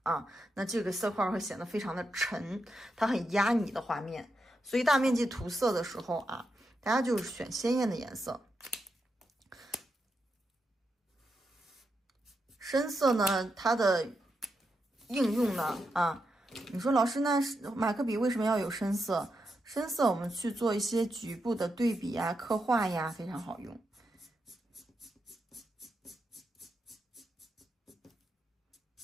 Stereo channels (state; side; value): normal; both; correlation 0.85